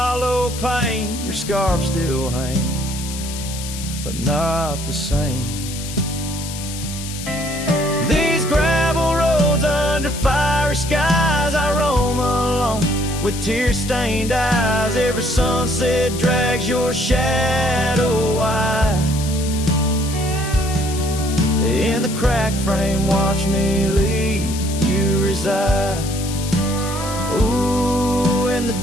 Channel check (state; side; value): noise; left; hiss, 10 dB below the sound